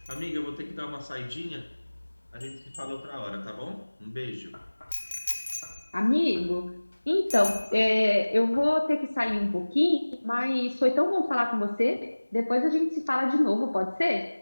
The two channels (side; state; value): both; inverted; correlation -1.00